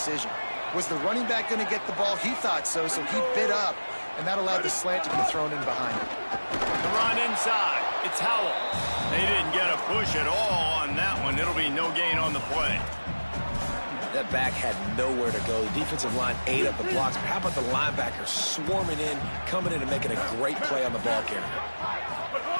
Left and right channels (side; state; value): both; inverted; correlation -1.00